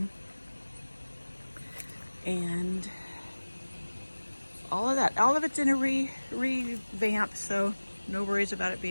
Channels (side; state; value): both; inverted; correlation -1.00